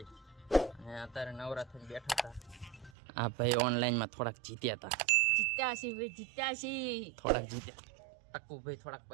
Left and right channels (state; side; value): drops out; left; at 2.9 s